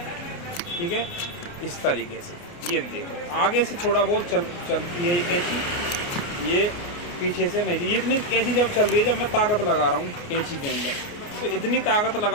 ठीक है, इस तरीके से। ये देखो आगे से थोड़ा बहुत चलती है ये कैंची, ये पीछे से नहीं। ये इतनी कैंची जब चल रही है, जब मैं ताकत लगा रहा हूँ कैंची के अंदर, तो इतनी ताकत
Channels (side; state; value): right; late; 29 ms